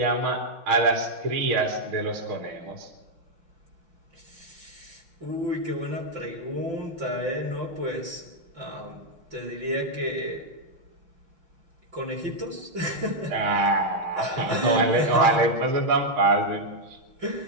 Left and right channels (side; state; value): left; late; 5.8 ms